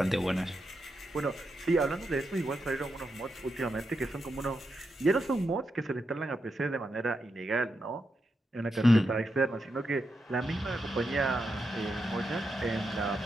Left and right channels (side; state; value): both; normal; correlation 0.85